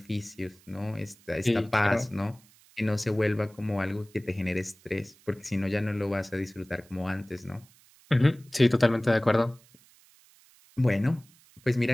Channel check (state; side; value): noise; right; hiss, 28 dB below the sound